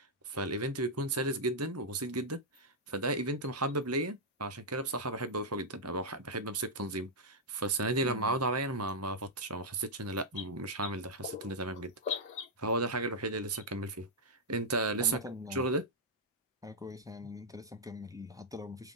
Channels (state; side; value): normal; both; correlation -0.05